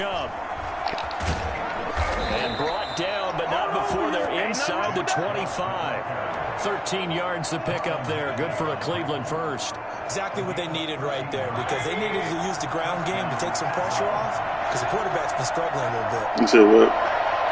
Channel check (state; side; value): identical; both; correlation 1.00